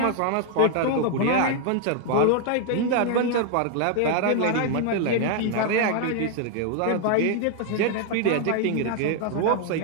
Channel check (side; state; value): both; different; correlation 0.00